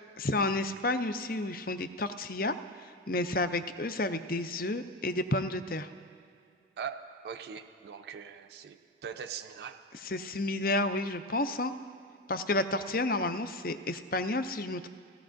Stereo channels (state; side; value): normal; both; correlation 0.19